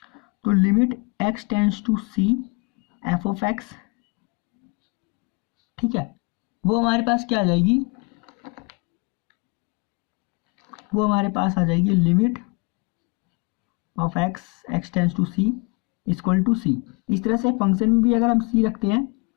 तो limit x tends to c f of x, ठीक है, वो हमारे पास क्या आ जाएगी, वो हमारे पास आ जाएगी limit of x tends to c equal to c। इस तरह से फंक्शन में भी अगर हम c रखते हैं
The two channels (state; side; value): quieter; right; 29.9 dB